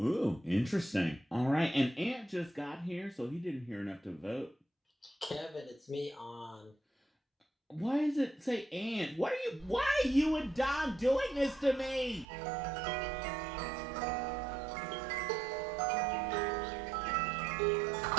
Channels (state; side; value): drops out; left; at 12.2 s